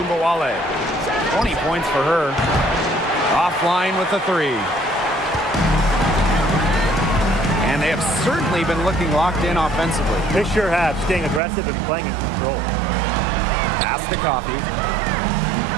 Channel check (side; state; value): left; drops out; at 11.4 s